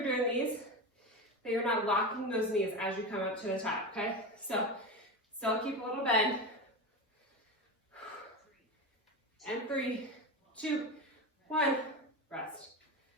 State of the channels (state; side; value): normal; both; correlation 0.21